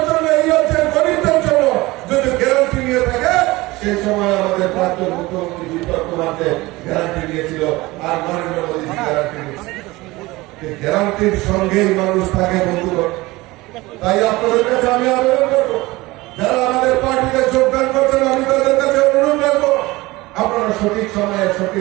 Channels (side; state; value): left; quieter; 20.6 dB